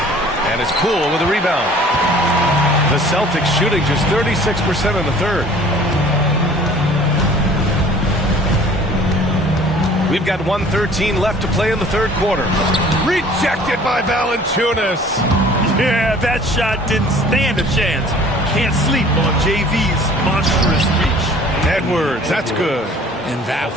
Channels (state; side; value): normal; both; correlation 0.50